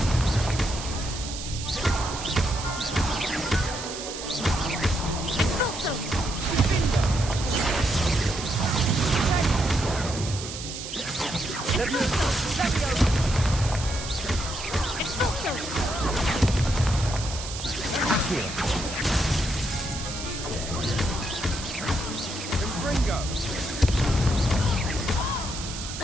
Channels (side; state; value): right; noise; hiss, 8 dB below the sound